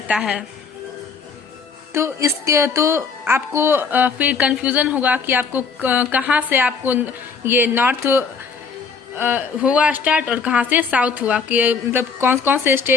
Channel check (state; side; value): quieter; right; 5.3 dB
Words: है। तो इसके तो आपको फिर कंफ्यूजन होगा कि आपको कहाँ से आपको ये नॉर्थ हुआ स्टार्ट और कहाँ से साउथ हुआ, कि मतलब कौन कौन से